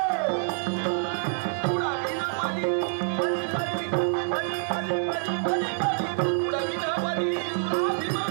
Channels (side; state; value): left; silent; digital silence